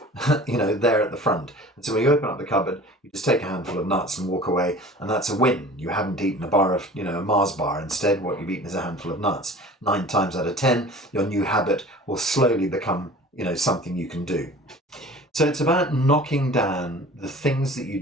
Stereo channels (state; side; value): normal; both; correlation 0.43